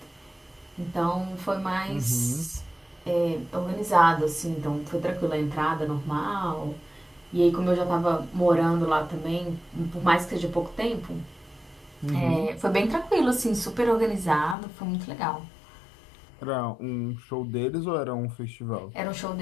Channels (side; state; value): right; drops out; at 14.6 s